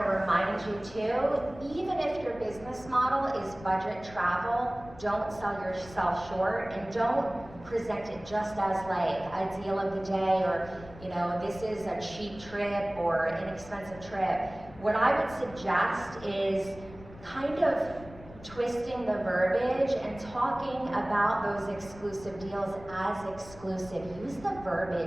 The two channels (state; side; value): noise; left; rumble, 18 dB below the sound